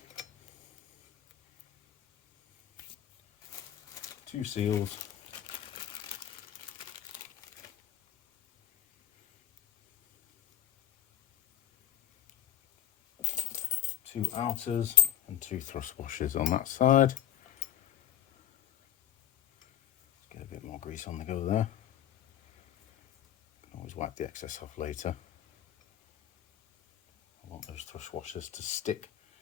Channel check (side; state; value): right; quieter; 11.4 dB